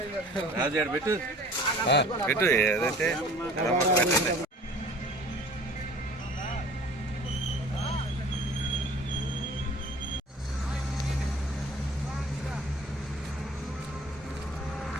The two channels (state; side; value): normal; both; correlation 0.47